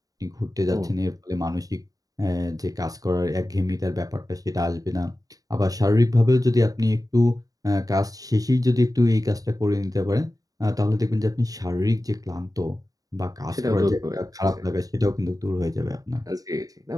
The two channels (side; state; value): left; late; 0.18 ms